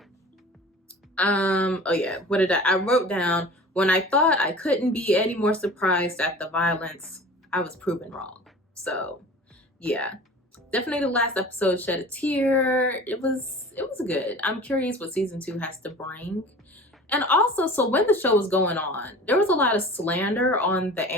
Oh yeah, what did I wrote down, when I thought I couldn't be any more surprised at the violence, I was proven wrong. So yeah, definitely the last episode shed a tear. It was good. I'm curious what season 2 has to bring. And also, so when the show was going on, there was a lot of slander on the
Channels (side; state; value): both; normal; correlation 0.40